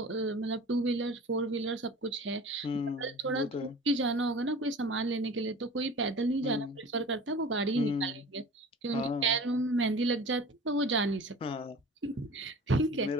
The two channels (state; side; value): normal; both; correlation 0.40